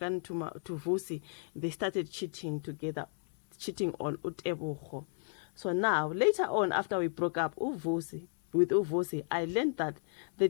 to Vusi, they started cheating together, cheating on uTebogo. So now, later on, after we broke up with Uvusi, I learned that the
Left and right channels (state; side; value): silent; right; digital silence